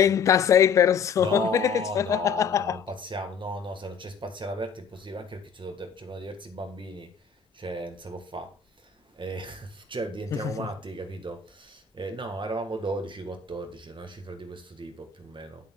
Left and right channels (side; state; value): right; quieter; 6.0 dB